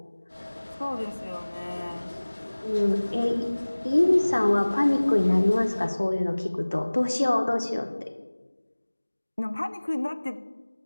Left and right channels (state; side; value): inverted; both; correlation -1.00